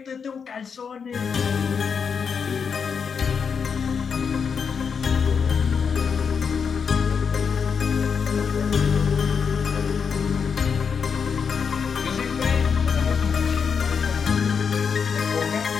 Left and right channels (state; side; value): quieter; right; 6.3 dB